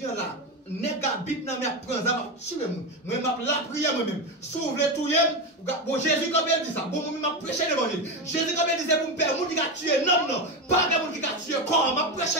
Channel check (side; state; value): both; normal; correlation 0.15